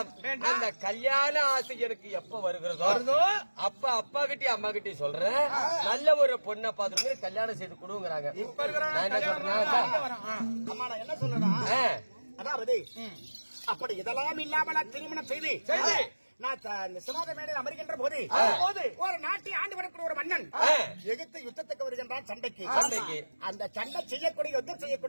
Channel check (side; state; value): both; inverted; correlation -1.00